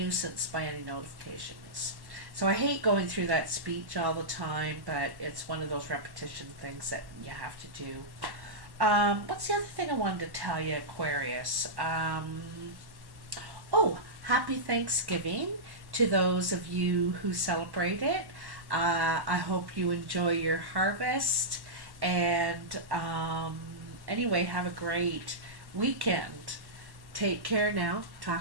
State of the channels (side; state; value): left; late; 1.1 ms